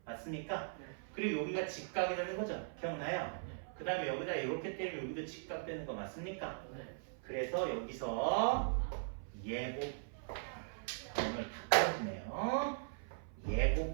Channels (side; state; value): left; silent; 51 dB below the other